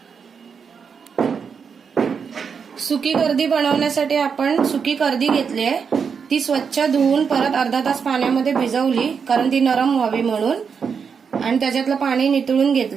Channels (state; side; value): quieter; left; 6.2 dB